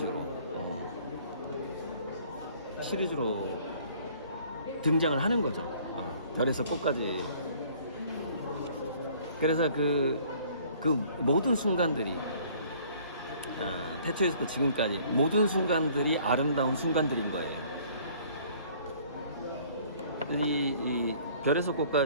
등장을 하는 거죠. 별에서 꽃까지. 그래서 그 모든 순간들이, 태초에서부터 지금까지 모든 순간들이 아름다운 순간들인 거예요. 이 별에서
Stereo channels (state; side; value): inverted; both; correlation -0.56